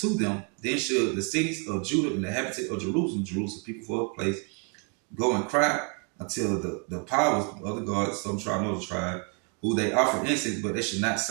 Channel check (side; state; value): left; quieter; 37.7 dB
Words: them. Then should the cities of Judah and the inhabitants of Jerusalem, people for a place, go and cry until the powers of other gods, some tribe, another tribe, who they offer incense, but they should not